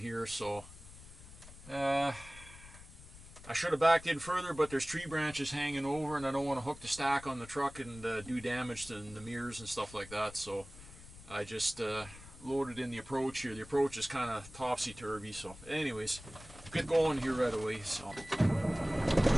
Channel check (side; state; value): left; noise; rumble, 17 dB below the sound